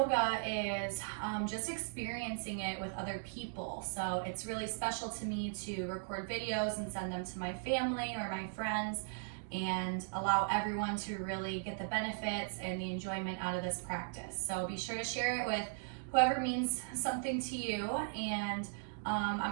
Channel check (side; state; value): left; silent; digital silence